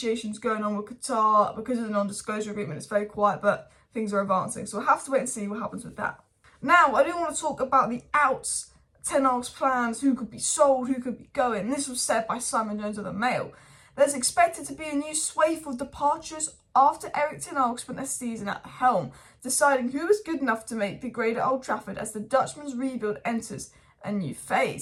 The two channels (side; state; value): both; identical; correlation 1.00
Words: going on with Qatar because of the non-disclosure agreement. It's very quiet, but things are advancing. So we'll have to wait and see what happens with that. Now, I do want to talk about the outs, Ten Hag's plans, who could be sold, who could be going. This was said by Simon Jones of the Mail. There's expected to be a new swathe of departures after Erik Ten Hag spent a season at the helm, deciding who is good enough to make the grade at Old Trafford as the Dutchman's rebuild enters a new